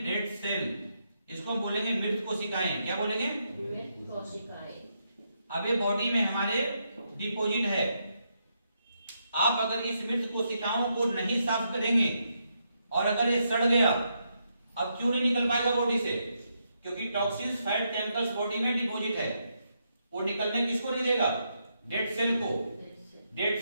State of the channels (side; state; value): both; inverted; correlation -0.80